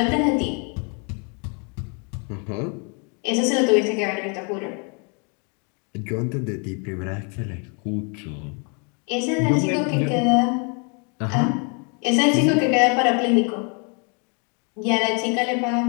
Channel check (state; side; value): quieter; right; 36.4 dB